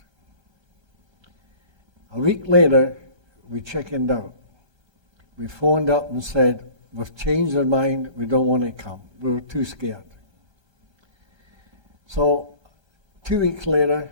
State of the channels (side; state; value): left; late; 1.3 ms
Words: A week later, we chickened out. We phoned up and said, we've changed our mind, we don't want to come. We were too scared. So 2 weeks later,